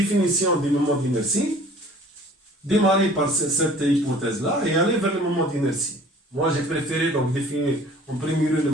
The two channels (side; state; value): both; normal; correlation 0.50